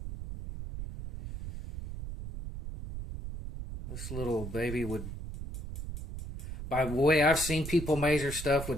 baby would, by the way I've seen people measure stuff,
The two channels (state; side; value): noise; right; rumble, 8 dB below the sound